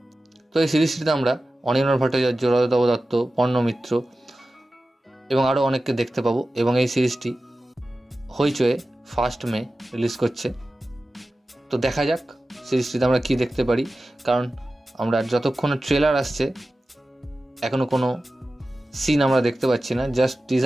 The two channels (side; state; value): both; normal; correlation 0.95